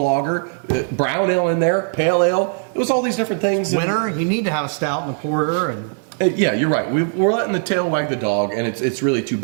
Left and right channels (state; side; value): silent; left; digital silence